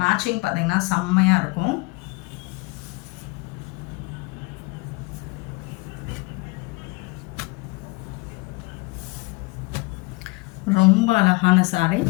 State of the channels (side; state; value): right; quieter; 26.1 dB